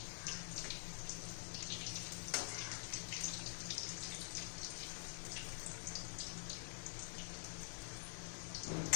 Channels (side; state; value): right; silent; digital silence